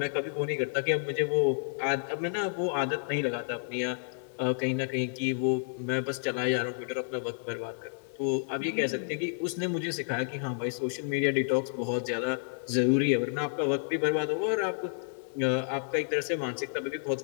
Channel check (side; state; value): right; silent; digital silence